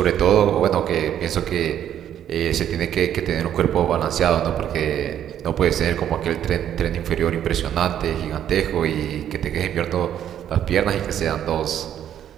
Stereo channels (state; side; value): quieter; left; 10.3 dB